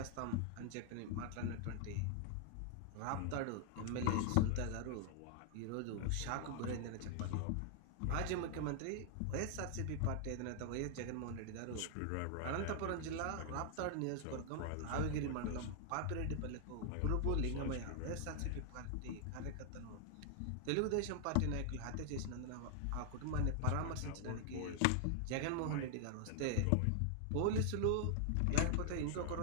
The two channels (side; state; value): both; different; correlation 0.00